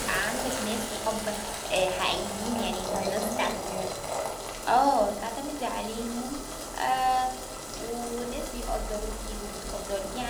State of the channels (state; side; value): identical; both; correlation 1.00